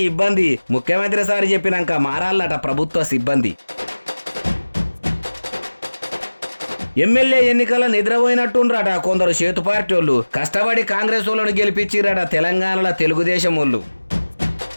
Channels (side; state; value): both; inverted; correlation -1.00